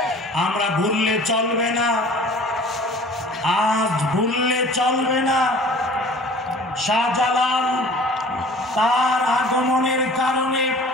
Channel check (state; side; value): normal; both; correlation 0.47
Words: আমরা ভুললে চলবে না, আজ ভুললে চলবে না। শাহজালাল তার আগমনের কারণে